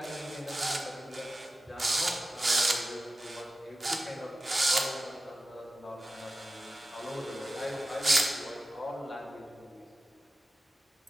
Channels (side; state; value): both; normal; correlation 0.93